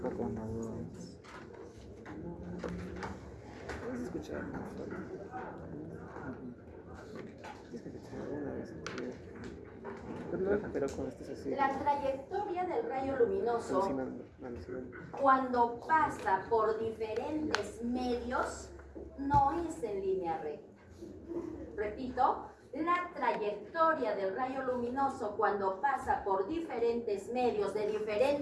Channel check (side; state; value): both; identical; correlation 1.00